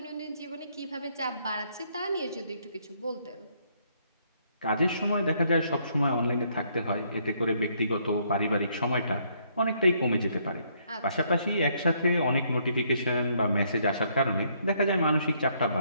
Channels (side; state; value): both; inverted; correlation -0.69